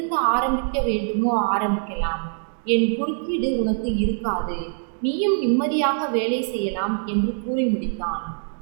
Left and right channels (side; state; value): left; silent; digital silence